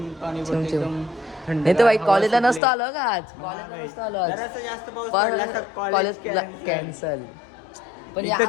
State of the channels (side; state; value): right; drops out; at 2.6 s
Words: पडतं चिमचिम. एकदम थंड. नाही तर भाई कॉलेजला नसतो आलो का आज. कॉलेजला नसतो आलो आज. जरासा जास्त पाऊस पडला तर कॉलेज cancel. कॅन्सल. पण इथं